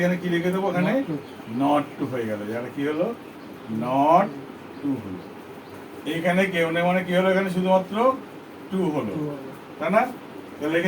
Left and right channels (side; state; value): both; identical; correlation 1.00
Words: এখানে কি লিখে দেবো? এখানে নট টু হয়ে গেল। এখানে কি হলো? নট টু হলো। এইখানে কেউ নেই মানে কি হলো? এখানে শুধুমাত্র টু হলো, তাই না? তাহলে